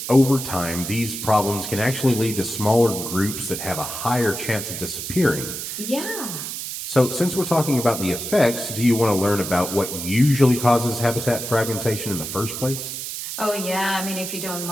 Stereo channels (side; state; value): right; noise; hiss, 6 dB below the sound